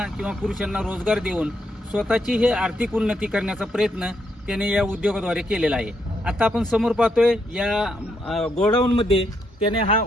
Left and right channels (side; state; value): both; normal; correlation 0.77